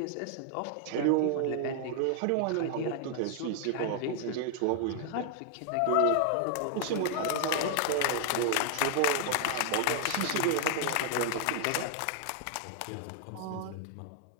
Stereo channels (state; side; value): different; both; correlation 0.00